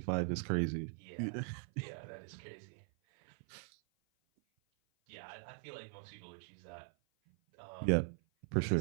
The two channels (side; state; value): left; silent; 51 dB below the other